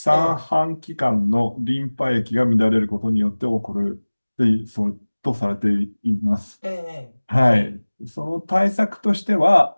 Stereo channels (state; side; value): inverted; both; correlation -1.00